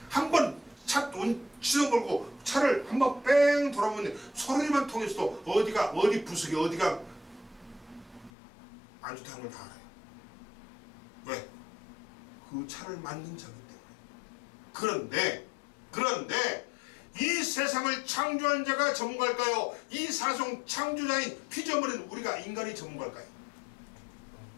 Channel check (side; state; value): right; drops out; at 8.3 s